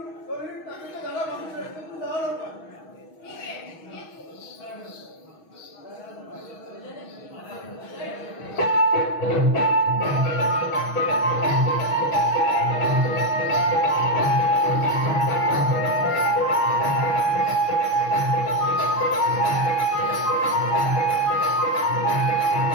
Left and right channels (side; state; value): right; late; 6.3 ms